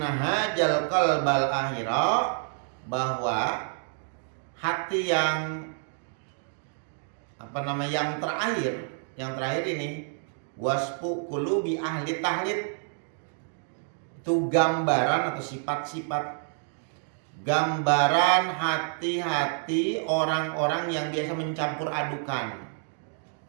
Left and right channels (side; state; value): left; silent; 59 dB below the other